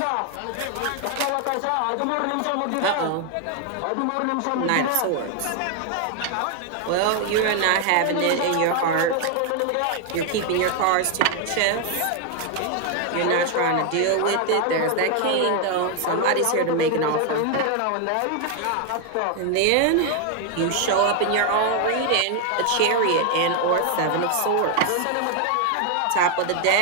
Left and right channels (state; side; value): different; both; correlation 0.00